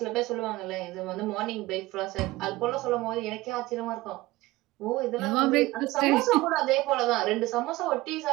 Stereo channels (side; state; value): left; quieter; 19.1 dB